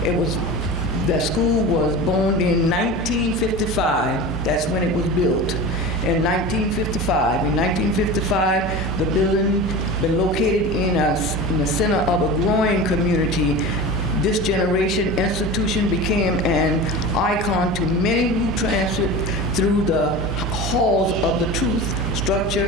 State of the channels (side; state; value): both; normal; correlation 0.31